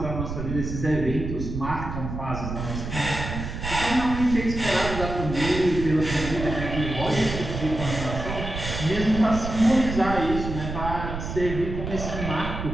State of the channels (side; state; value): right; noise; rumble, 6 dB below the sound